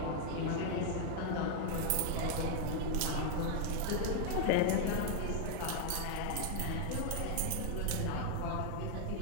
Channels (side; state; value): both; different; correlation 0.00